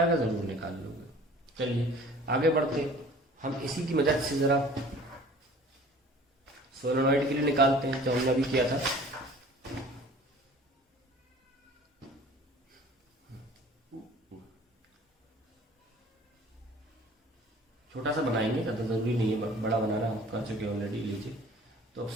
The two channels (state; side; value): normal; both; correlation 0.47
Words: का जरूर निकाल लोगे। चलिए आगे बढ़ते, हम इसी की मदद से जरा सोलेनॉइड के लिए निकालते हैं जो हमने अभी किया था। छोटा सा बनाएंगे, ज्यादा जरूरी नहीं है बड़ा बनाना, हम कर चुके हैं ऑलरेडी। लीजिए, तो अब